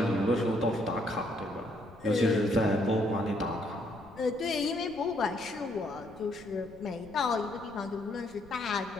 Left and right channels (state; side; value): noise; left; rumble, 23 dB below the sound